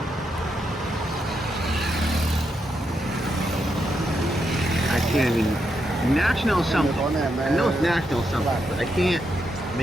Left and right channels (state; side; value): normal; both; correlation 0.82